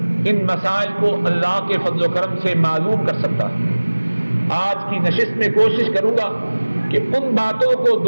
ان مسائل کو اللہ کے فضل و کرم سے معلوم کر سکتا ہے۔ آج کی نشست میں کوشش کروں گا کہ ان باتوں کو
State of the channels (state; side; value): inverted; both; correlation -1.00